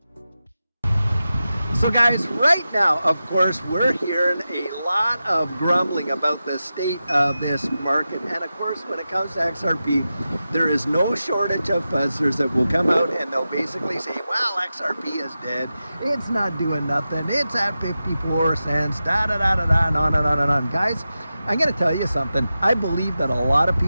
So guys, right now, of course, we're hearing a lot of grumbling about the state of this market. And of course, when it comes to XRP, there is no shortage of fuzzers that will come out and they'll basically say, well, XRP is dead. It's not doing nothing. It's at 54 cents, da-da-da-da-da, and on and on and on. Guys, I'm going to tell you something. I believe that a lot of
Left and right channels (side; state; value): both; inverted; correlation -0.92